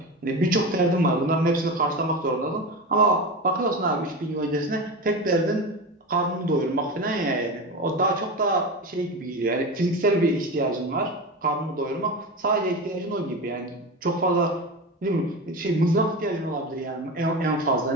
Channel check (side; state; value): both; normal; correlation 0.24